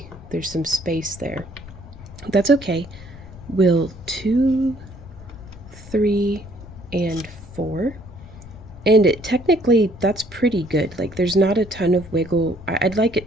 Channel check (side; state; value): left; noise; rumble, 17 dB below the sound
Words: there's some space there. That's okay. We'll 2, 3, and 4. And technically, that's pretty good. Like, there's not a ton of wiggle. I'd like